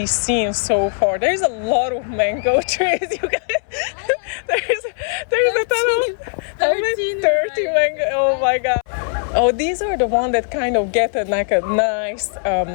seen so far? There's a lot of mango trees, you guys. There's a ton of 13 30 mango. Oh my god. Oh, these are the ones that kind of get like a nice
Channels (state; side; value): silent; right; 64 dB below the other